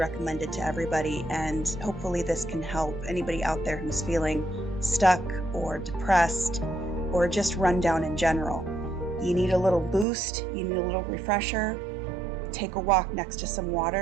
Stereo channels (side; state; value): left; drops out; at 10.1 s